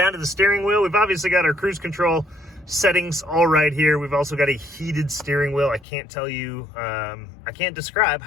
to the steering wheel, we've obviously got our cruise control settings all right here. We've also got a heated steering wheel. I can't tell you, I can't describe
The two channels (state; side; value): drops out; right; at 5.9 s